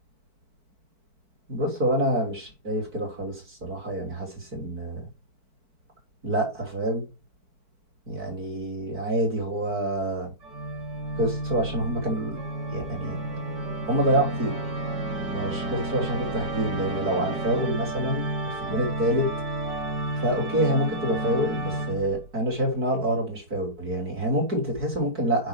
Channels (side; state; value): left; late; 4.5 ms